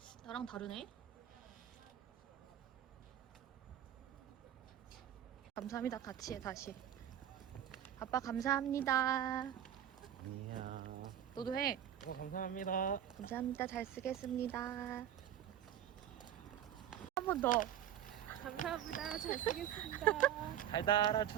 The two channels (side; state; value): left; quieter; 10.6 dB